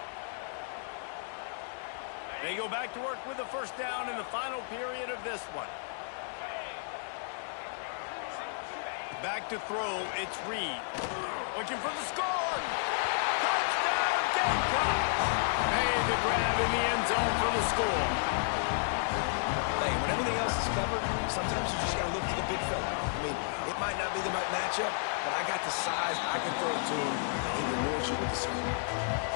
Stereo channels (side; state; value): right; silent; digital silence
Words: They go back to work with the first down in the final period of this one. Back to throw, it's Reed. Looking for the score. Touchdown, Gamecocks! Made the grab in the end zone for the score. Hey, when everything else is covered, sometimes you just got to look to the big fella. I mean, it might not be the right matchup, but I got the size, I can throw it to him, and he rewards you with the score.